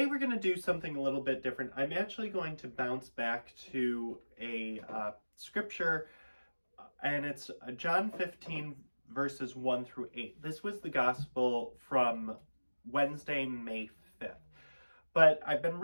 we're going to do something a little bit different. I'm actually going to bounce back to a scripture, and it's John 15, verses 1 through 8. This was the gospel from Wednesday, May 5th. But I've been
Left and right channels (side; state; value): both; inverted; correlation -1.00